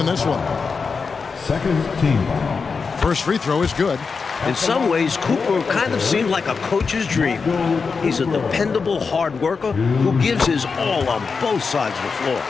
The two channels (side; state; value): right; quieter; 5.0 dB